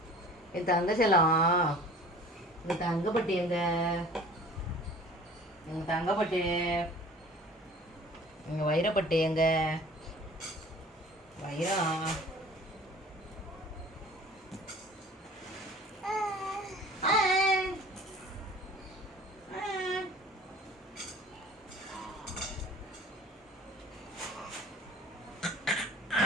என் தங்க செல்லம், எங்க தங்கப்பட்டி எங்க? எங்க தங்கப்பட்டி, எங்க வைரப்பட்டி எங்க? வைரம்.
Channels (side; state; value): both; normal; correlation 0.46